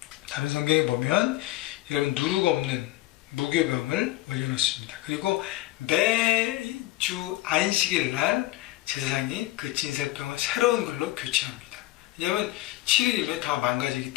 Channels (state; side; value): quieter; right; 17.2 dB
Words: 다른 성경에 보면 여러분 누룩 없는 무교병을 올려놓습니다. 그리고 매주 안식일 날 제사장이 그 진설병을 새로운 걸로 교체합니다. 왜냐하면 7일이면 다 망가지기